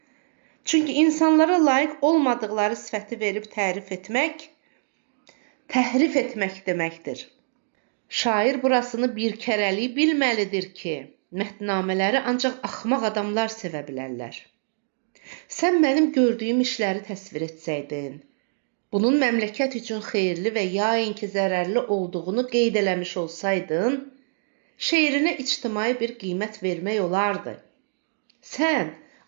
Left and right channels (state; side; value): silent; left; digital silence